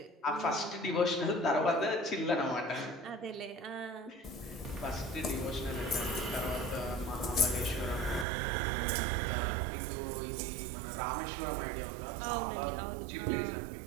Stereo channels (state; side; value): drops out; left; at 8.2 s